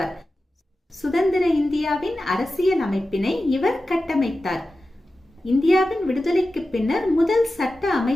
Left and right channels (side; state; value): both; normal; correlation 0.94